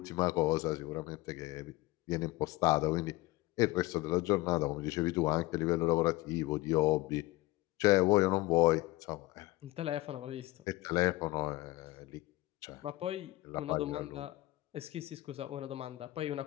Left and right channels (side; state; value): right; quieter; 19.6 dB